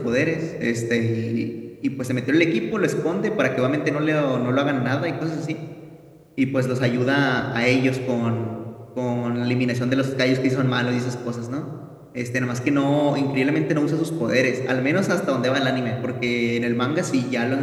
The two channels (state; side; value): identical; both; correlation 1.00